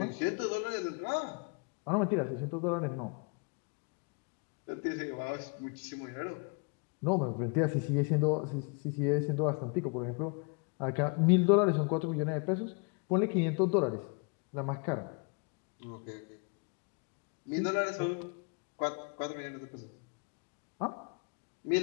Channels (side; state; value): right; quieter; 34.3 dB